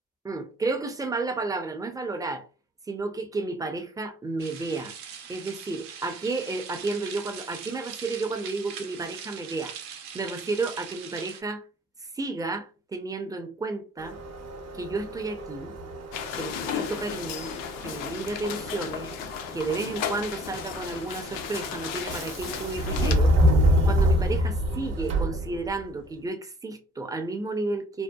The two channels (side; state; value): both; normal; correlation 0.57